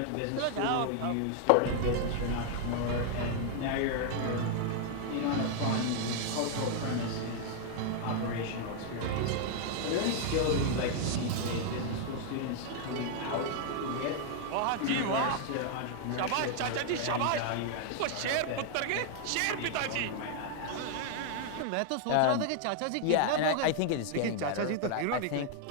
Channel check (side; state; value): both; different; correlation 0.00